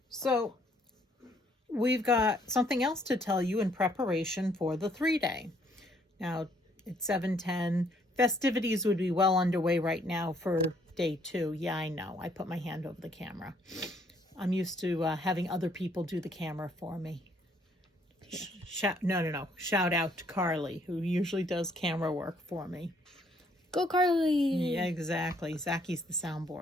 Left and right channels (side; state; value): both; normal; correlation 0.66